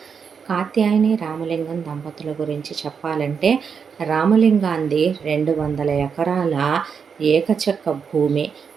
కాత్యాయని రామలింగం దంపతుల గురించి చెప్పాలంటే రామలింగాంది 200 ఎకరాల ఏకచక్క భూమి,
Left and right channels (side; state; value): left; quieter; 6.4 dB